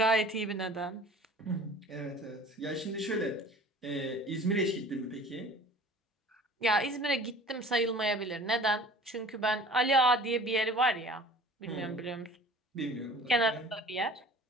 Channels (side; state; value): both; normal; correlation 0.45